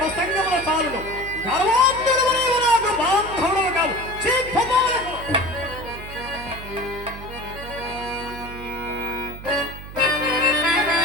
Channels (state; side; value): noise; right; hum, 13 dB below the sound